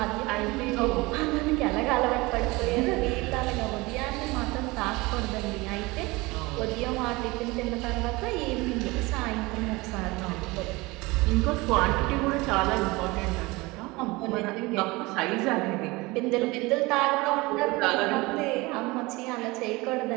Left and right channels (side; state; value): left; quieter; 22.8 dB